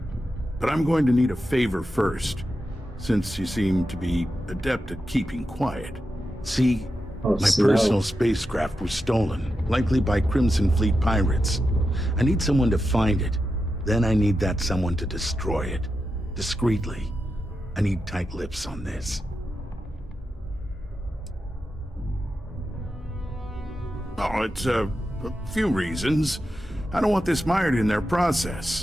But I'm going to need a favor first, since you seem to be adept at keeping quiet. See, my personal spacecraft was stolen, likely by Crimson Fleet pirates. I need someone to find it. Then I need that someone to destroy it. Discreetly. I need tight lips on this. Oh, it's a few reasons. I don't want this mired in their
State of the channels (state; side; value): normal; both; correlation 0.89